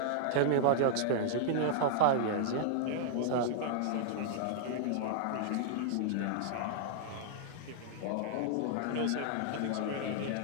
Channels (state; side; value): different; both; correlation -0.02